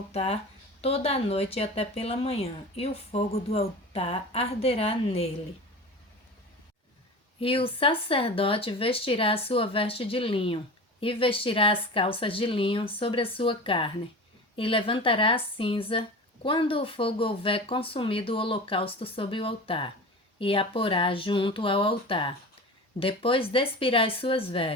toda a noite até pela manhã, e o fogo do altar arderá nele. E o sacerdote vestirá a sua veste de linho, e vestirá as calças de linho sobre a sua carne, e levantará a cinza quando o fogo houver consumido o holocausto sobre o altar, e a porá junto ao altar. Depois despirá as suas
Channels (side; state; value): both; normal; correlation 0.33